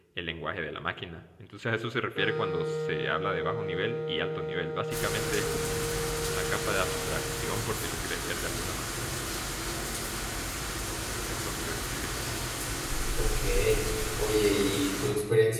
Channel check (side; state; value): both; identical; correlation 1.00